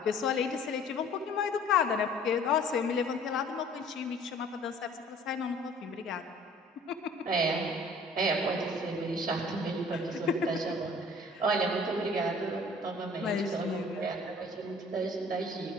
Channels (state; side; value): normal; both; correlation 0.51